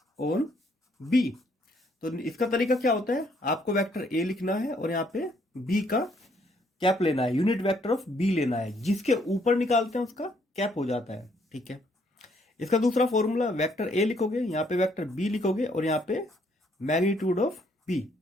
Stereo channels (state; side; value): normal; both; correlation 0.68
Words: on B, तो इसका तरीका क्या होता है, आपको वेक्टर ए लिखना है और यहाँ पे बी का कैप लेना है, यूनिट वेक्टर ऑफ बी लेना है, जिसके ऊपर निकालते हैं उसका कैप हो जाता है। ठीक है, इसका दूसरा फॉर्मूला, वेक्टर ए लिखोगे, यहाँ पे वेक्टर बी लिखोगे और यहाँ पे मैग्नीट्यूड ऑफ बी,